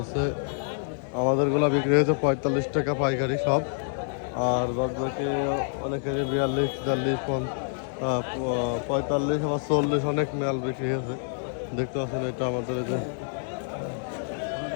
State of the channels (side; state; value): right; silent; digital silence